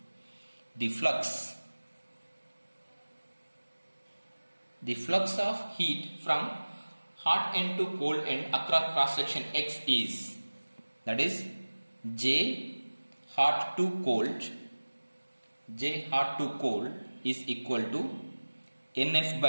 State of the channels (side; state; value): both; inverted; correlation -1.00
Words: the flux of heat from hot end to cold end across cross section x is, that is J hot to cold is equal to NF